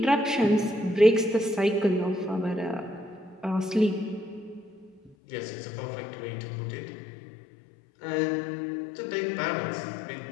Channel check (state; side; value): drops out; right; at 5.2 s